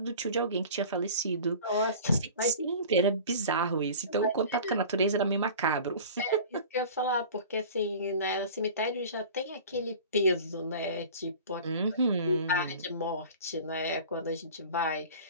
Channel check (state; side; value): inverted; both; correlation -0.40